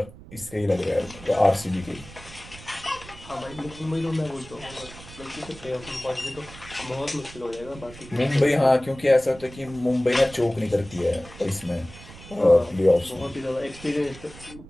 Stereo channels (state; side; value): noise; right; rumble, 18 dB below the sound